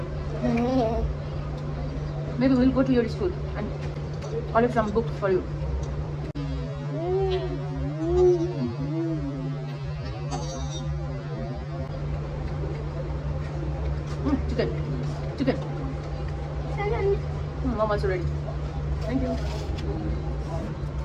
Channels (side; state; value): both; identical; correlation 1.00